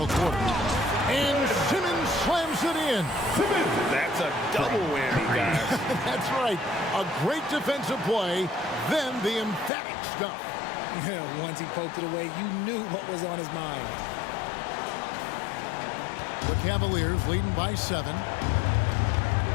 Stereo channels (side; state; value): right; drops out; at 9.7 s